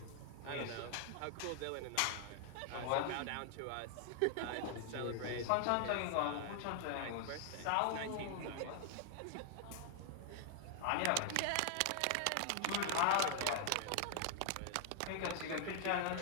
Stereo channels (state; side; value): different; both; correlation 0.00